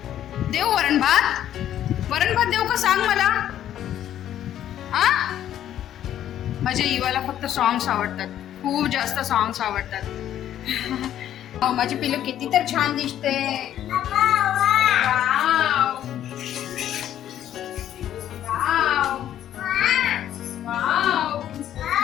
देऊ वरण भात? वरण भात देऊ का सांग मला? आ माझ्या इवाला फक्त सॉंग्स आवडतात, खूप जास्त सॉंग्स आवडतात. माझी पिल्लू किती तर छान दिसते. Wow wow wow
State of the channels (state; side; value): quieter; right; 11.2 dB